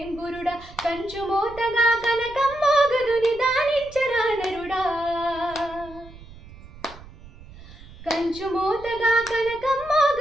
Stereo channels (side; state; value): right; noise; rumble, 19 dB below the sound